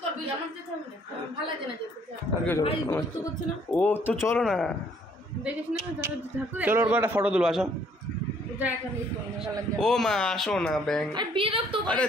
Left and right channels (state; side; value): normal; both; correlation 0.63